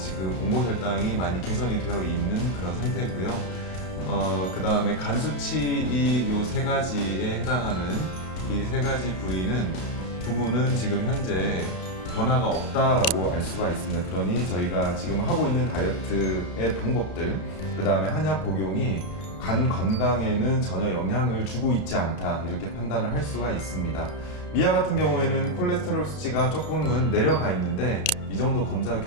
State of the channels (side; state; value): right; late; 32 ms